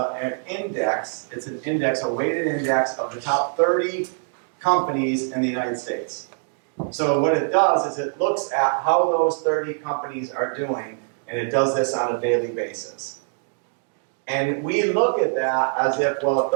index. It's an index, a weighted index of the top 30 companies in the United States. So what it does is it looks at how those 30 companies are doing, and it does this on a daily basis. And we look at that as if, well, if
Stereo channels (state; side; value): silent; left; 63 dB below the other